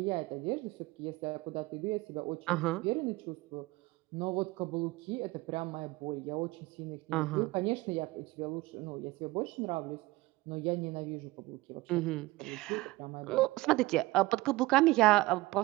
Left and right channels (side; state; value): left; quieter; 20.2 dB